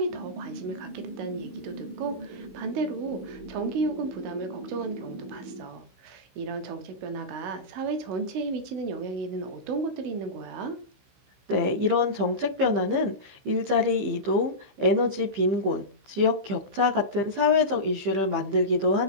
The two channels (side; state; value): left; late; 15 ms